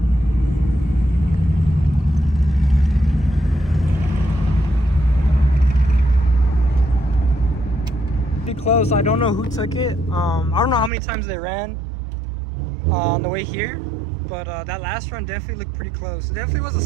Close. I don't know who took it. I don't know how many times they ran on the way here, but that last run definitely looked pretty close. It definitely was a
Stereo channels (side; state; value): left; drops out; at 10.9 s